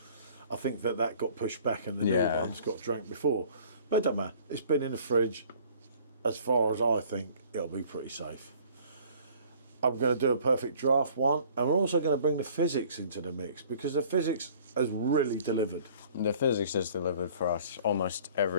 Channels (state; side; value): inverted; both; correlation -0.53